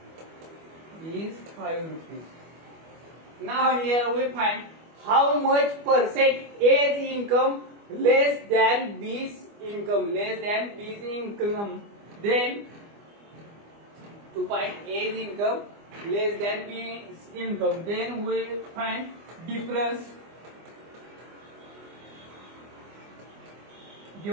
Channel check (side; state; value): left; late; 25 ms